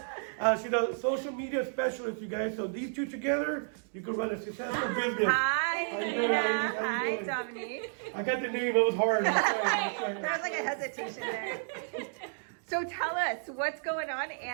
She's a social media specialist, you guys. So these two together, you can run a successful business. Hi, Nina. Hi, Dominique. I got the name. It was hard. I'm sorry. There was like a hesitation there. So tell us what's going on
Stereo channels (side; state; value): left; silent; digital silence